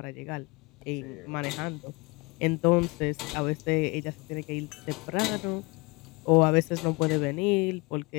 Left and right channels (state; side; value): quieter; right; 26.2 dB